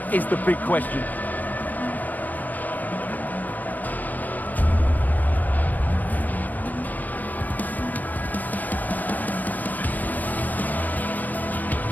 is the big question.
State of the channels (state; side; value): late; right; 0.085 ms